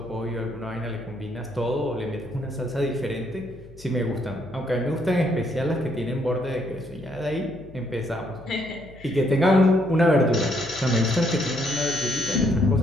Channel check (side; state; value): left; noise; hum, 20 dB below the sound